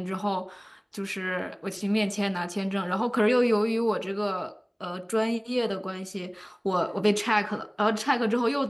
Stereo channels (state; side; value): identical; both; correlation 1.00